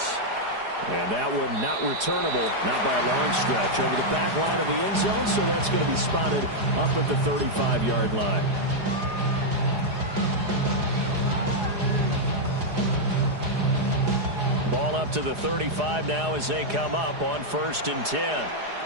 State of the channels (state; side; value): late; left; 4.9 ms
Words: And that one not returnable, not by a long stretch, over the back line of the end zone, so that's going to be spotted up at the 35-yard line. Ball up to the 35 now as they come up on 1st and 10.